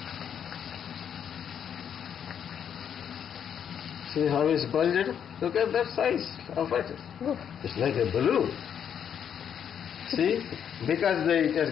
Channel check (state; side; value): quieter; right; 8.5 dB